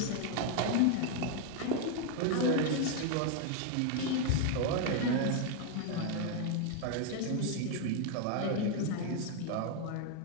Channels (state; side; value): different; both; correlation 0.01